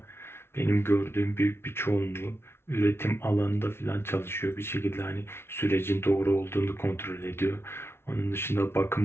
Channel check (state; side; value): late; right; 0.12 ms